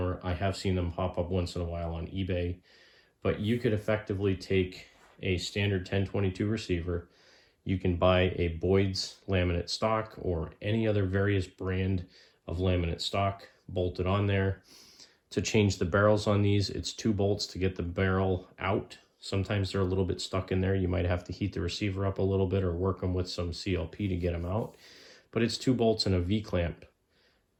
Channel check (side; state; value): both; identical; correlation 1.00